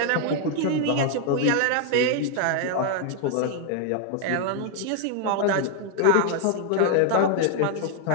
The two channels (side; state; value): both; different; correlation 0.00